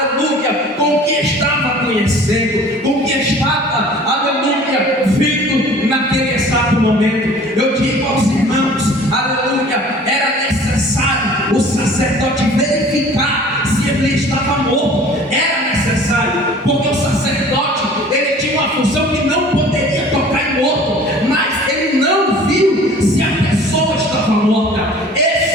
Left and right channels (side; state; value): both; normal; correlation 0.47